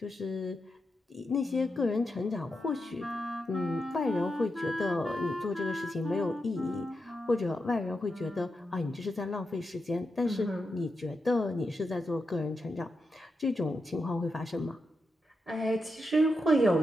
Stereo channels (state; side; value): normal; both; correlation 0.87